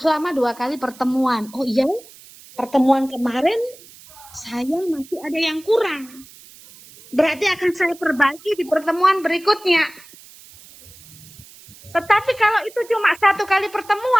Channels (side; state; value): right; noise; hiss, 22 dB below the sound